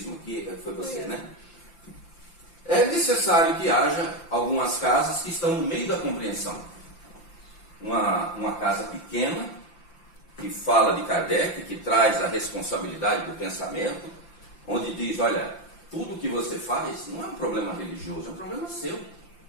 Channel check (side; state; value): right; late; 5.8 ms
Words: aqui, foi você, né? É necessário que haja algumas casas que estão no meio da compreensão. Uma casa pequena, que fala de Kardec, que traz a responsabilidade do pensamento, onde diz, olha, tudo que você faz não é um problema religioso, é um problema seu.